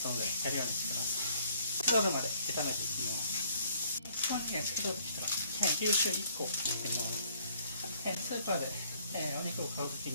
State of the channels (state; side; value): inverted; both; correlation -0.62